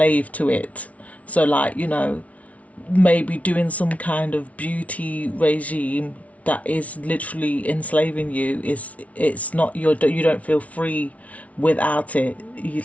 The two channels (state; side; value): late; right; 0.067 ms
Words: to it. So like, you know, maybe doing some kind of beauty regime that is literally enslaving you, it's not you don't feel free without it. You